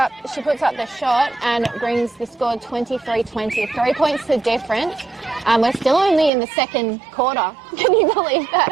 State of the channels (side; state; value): left; drops out; at 6.3 s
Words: she puts up the shot and brings the score 23-20. 3 points the difference. We're still only in the second quarter. Can you believe that,